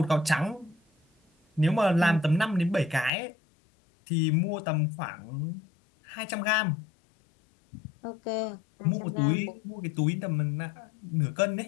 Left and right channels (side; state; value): right; drops out; at 3.1 s